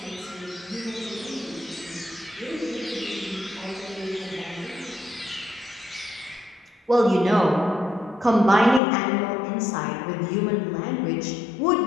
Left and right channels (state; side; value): drops out; right; at 8.8 s